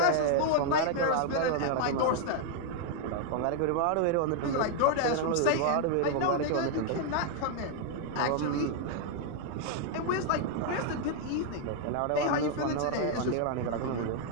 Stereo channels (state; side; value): different; both; correlation 0.00